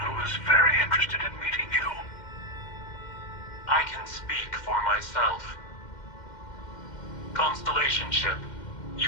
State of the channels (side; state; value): right; late; 2.1 ms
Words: who is very interested in meeting you. I can speak for myself. Constellation ship,